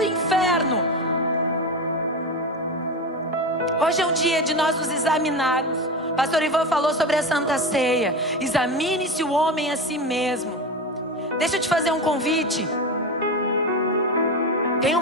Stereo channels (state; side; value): normal; both; correlation 0.21